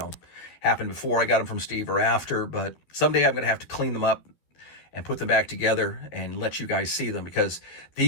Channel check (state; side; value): late; right; 13 ms